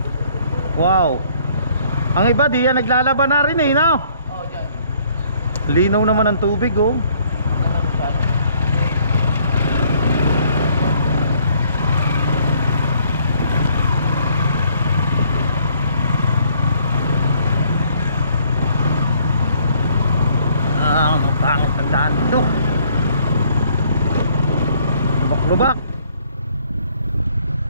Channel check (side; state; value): both; inverted; correlation -0.63